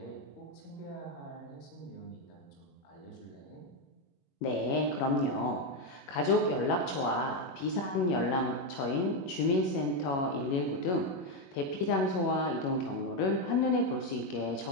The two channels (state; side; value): late; right; 22 ms